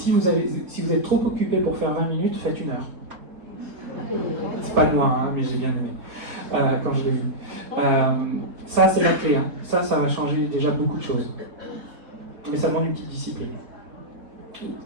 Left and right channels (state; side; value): late; left; 4.1 ms